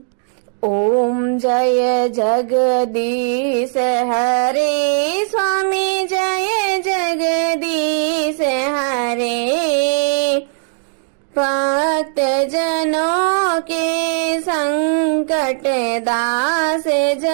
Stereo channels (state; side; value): silent; left; digital silence